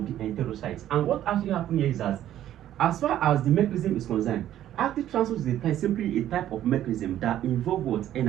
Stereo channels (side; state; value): left; quieter; 12.1 dB